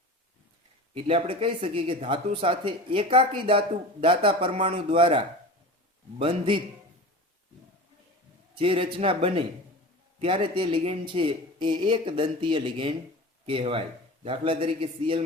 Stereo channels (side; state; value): both; normal; correlation 0.33